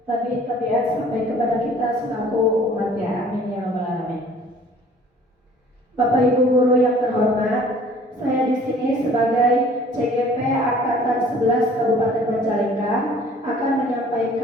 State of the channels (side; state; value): both; normal; correlation 0.52